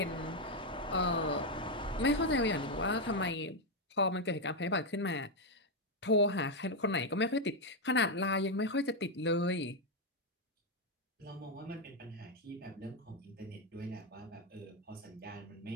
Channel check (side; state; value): both; normal; correlation 0.03